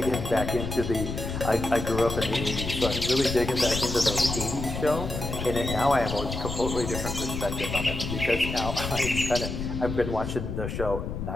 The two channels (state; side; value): noise; left; rumble, 5 dB below the sound